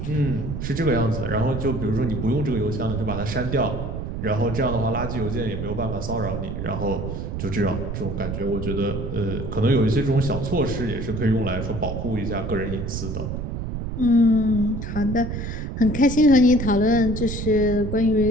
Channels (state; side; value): noise; right; rumble, 5 dB below the sound